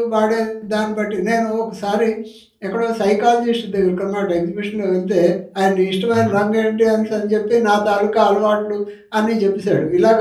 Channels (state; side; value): identical; both; correlation 1.00